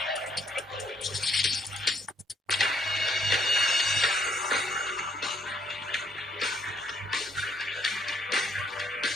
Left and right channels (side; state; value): both; normal; correlation 0.68